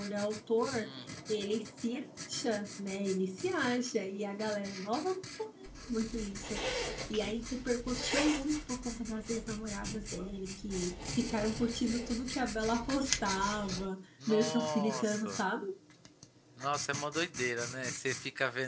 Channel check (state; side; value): identical; both; correlation 1.00